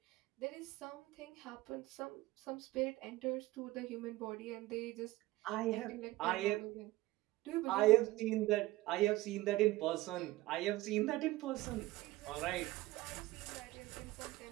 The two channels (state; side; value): quieter; left; 18.2 dB